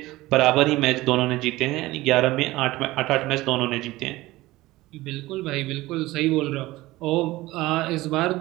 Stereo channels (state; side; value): quieter; left; 18.4 dB